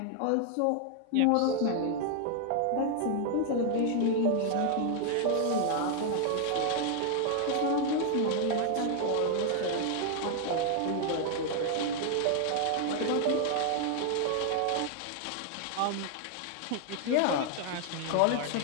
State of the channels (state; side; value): different; both; correlation 0.00